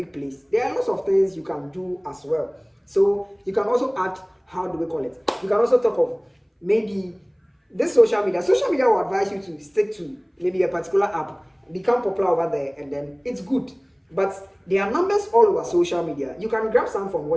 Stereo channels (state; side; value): identical; both; correlation 1.00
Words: place. There are lots of things you can do as well. So you can also add, how do we call it? You can also talk of maybe this social media. Social media will advise you to stick to maybe a particular app, become popular over there, and then it's good. But there are numbers all over social media. You can grab some from